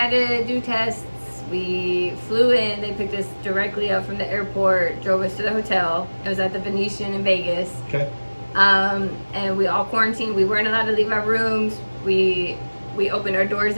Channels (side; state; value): both; inverted; correlation -1.00